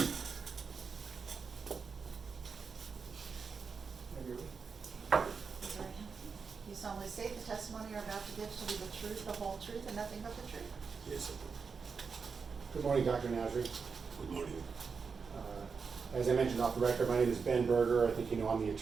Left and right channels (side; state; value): left; quieter; 5.4 dB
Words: You solemnly state the testimony you're about to give shall be the truth, the whole truth, and nothing but the truth? Yes, I do. Good morning, Dr. Nasri. Good morning. As I mentioned off the record, my name is Ben Berger. I think you know I'm the